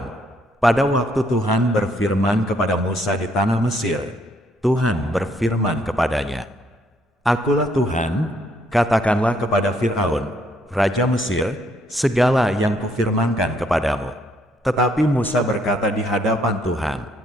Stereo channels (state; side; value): normal; both; correlation 0.69